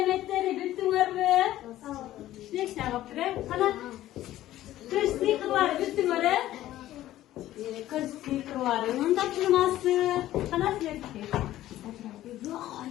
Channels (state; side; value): quieter; right; 14.2 dB